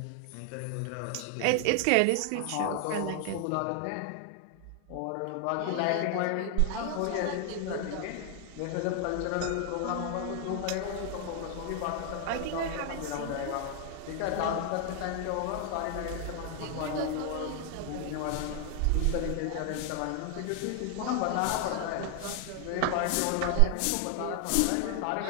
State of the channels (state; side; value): different; both; correlation 0.00